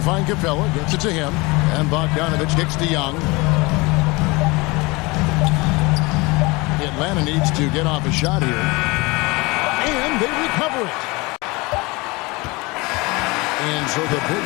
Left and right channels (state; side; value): quieter; right; 24.7 dB